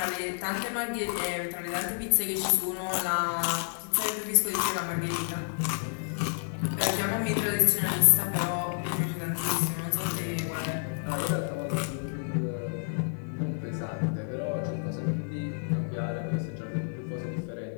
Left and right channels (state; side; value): silent; right; digital silence